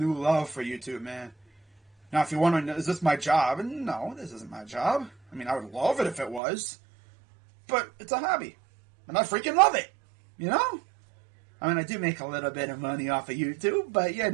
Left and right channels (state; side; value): drops out; left; at 6.4 s